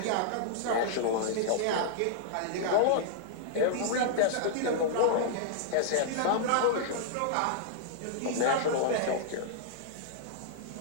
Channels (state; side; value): different; both; correlation -0.01